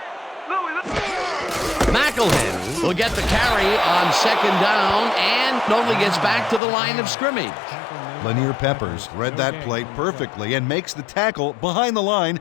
Louie. McElhenney will get the carry on second down and only gets back to the line of scrimmage. Lanier Peppers read that play perfectly and makes the tackle behind the line,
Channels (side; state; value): right; drops out; at 6.6 s